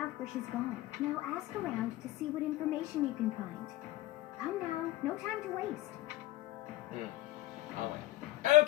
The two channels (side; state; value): right; quieter; 17.0 dB